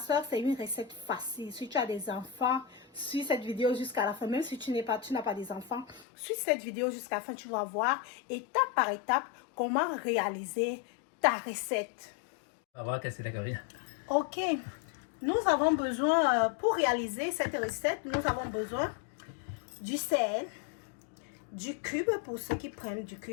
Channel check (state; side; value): drops out; right; at 6.1 s